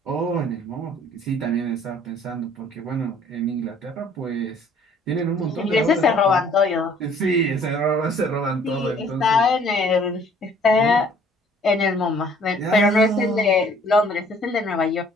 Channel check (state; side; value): normal; both; correlation 0.57